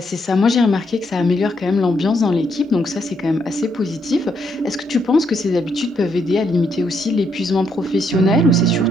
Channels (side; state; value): both; normal; correlation 0.76